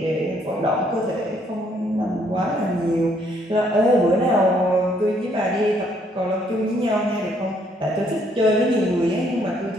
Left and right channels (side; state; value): both; normal; correlation 0.68